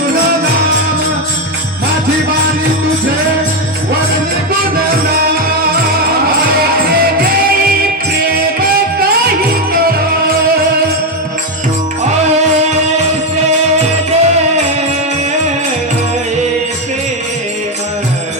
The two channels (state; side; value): normal; both; correlation 0.07